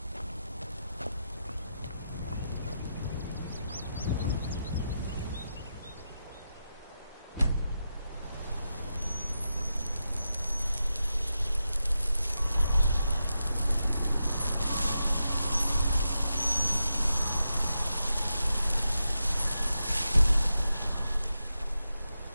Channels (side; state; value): both; inverted; correlation -0.88